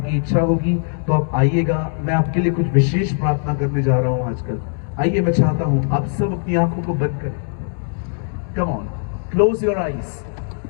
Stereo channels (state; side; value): silent; right; 57 dB below the other